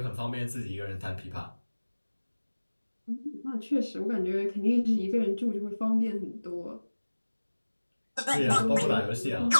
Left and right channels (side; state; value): both; inverted; correlation -1.00